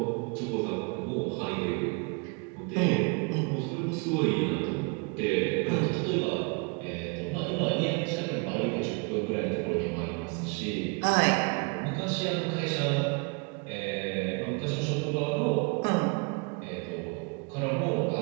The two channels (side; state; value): left; quieter; 33.0 dB